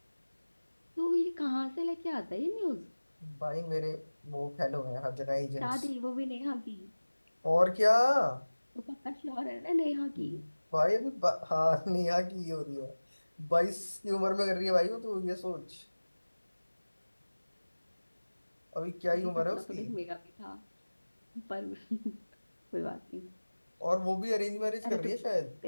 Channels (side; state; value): both; inverted; correlation -1.00